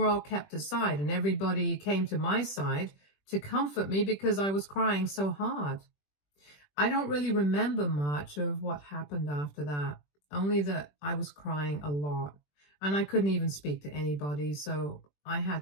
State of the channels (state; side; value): late; right; 21 ms